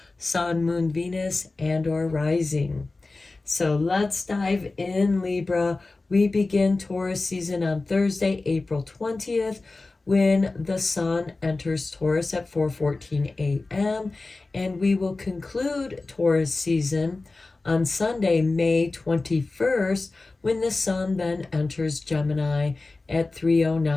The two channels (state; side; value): quieter; right; 3.4 dB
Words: Sun, Moon, Venus, and or Rising. So let's dive in, Libra. We begin Taurus season on Thursday, April 20th, when the sun enters Taurus at 4:14 a.m. And we will conclude Taurus season on Sunday, May 21st, when the sun then enters Gemini at